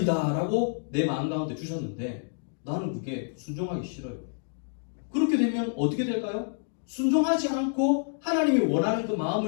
내 마음 가운데 주셨는데 나는 그게 순종하기 싫어요. 그렇게 되면 어떻게 될까요? 순종하지 않고 하나님이 원하는 그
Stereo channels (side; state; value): right; silent; digital silence